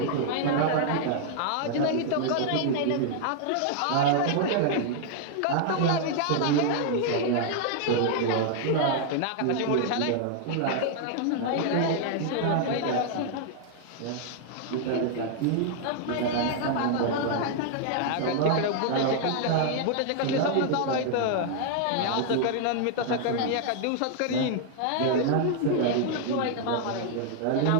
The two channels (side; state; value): both; different; correlation 0.00